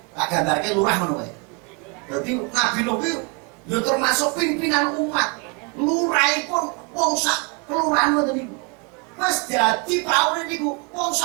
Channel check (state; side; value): quieter; left; 32.1 dB